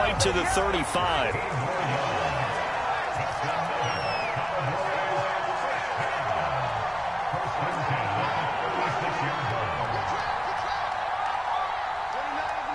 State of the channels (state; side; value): identical; both; correlation 1.00